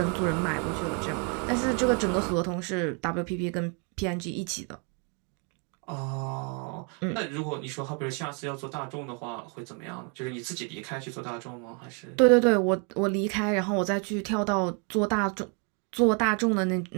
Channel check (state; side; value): quieter; left; 37.3 dB